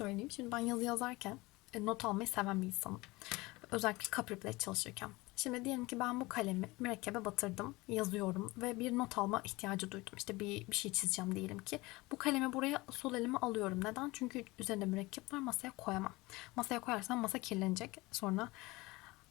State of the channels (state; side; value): quieter; right; 21.9 dB